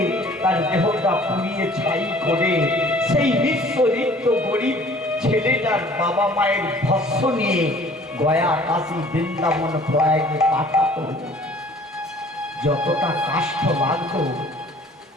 তার দেহটা পুড়িয়ে ছাই করে সেই নিঃস্ব গরিব ছেলেটার বাবা মায়ের ভস্ম নিয়ে গয়া, কাশী, বৃন্দাবন, প্রয়াগে পাঠাতো। যতটা কষ্ট লাগতো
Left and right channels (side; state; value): both; normal; correlation 0.52